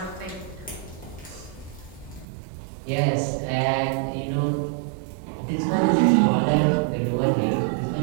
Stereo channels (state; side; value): drops out; left; at 2.2 s